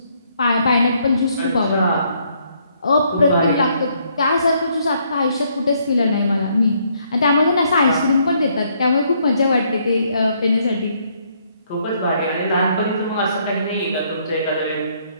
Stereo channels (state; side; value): inverted; both; correlation -0.70